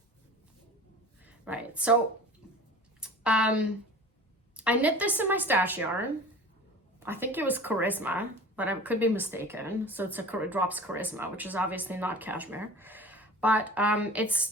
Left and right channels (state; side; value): normal; both; correlation 0.40